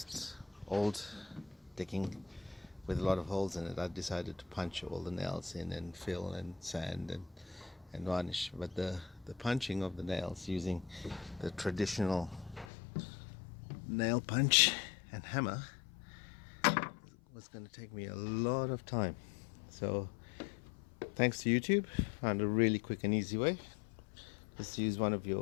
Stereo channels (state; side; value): drops out; right; at 12.7 s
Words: old decking with a lot of holes in it, I decided to punch all the nails in and fill and sand and varnish. But the punching of the nails using the traditional nail punch and hammer was going to take me a lot of time. So thanks to YouTube, found a really quick and easy way. Just use one of